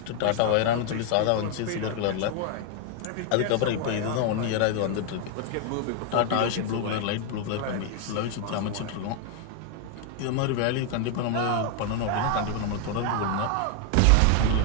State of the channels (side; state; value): both; different; correlation 0.00